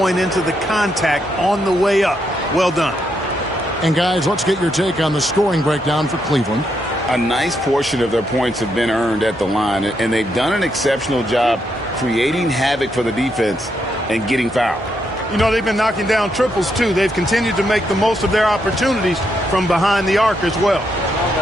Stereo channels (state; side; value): normal; both; correlation 0.79